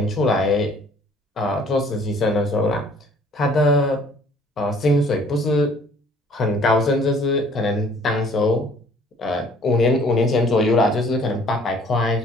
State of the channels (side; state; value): both; normal; correlation 0.56